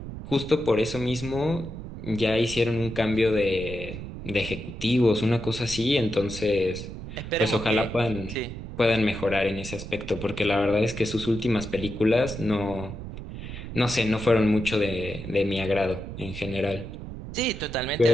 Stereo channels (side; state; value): right; noise; rumble, 9 dB below the sound